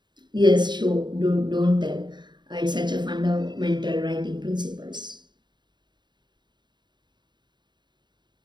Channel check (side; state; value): left; late; 0.21 ms